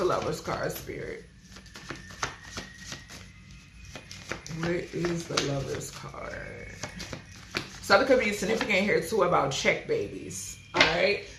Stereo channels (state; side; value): identical; both; correlation 1.00